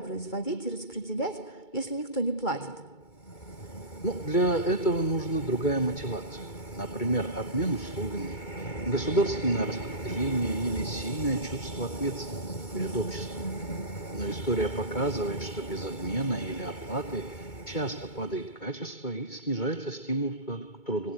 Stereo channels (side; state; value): right; late; 2.2 ms